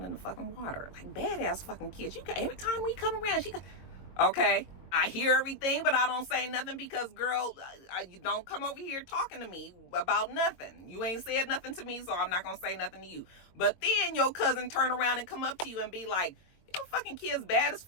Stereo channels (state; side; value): late; right; 22 ms